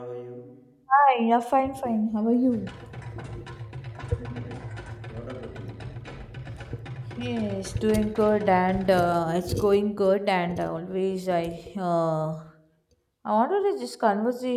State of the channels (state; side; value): identical; both; correlation 1.00